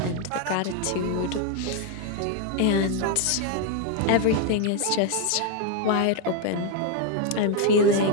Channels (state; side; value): different; both; correlation 0.01